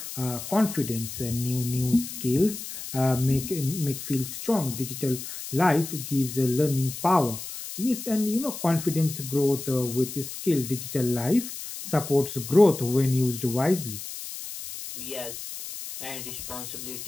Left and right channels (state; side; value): noise; left; hiss, 9 dB below the sound